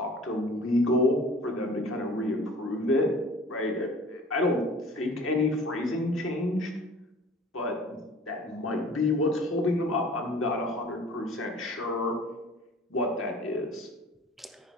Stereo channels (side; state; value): both; normal; correlation 0.46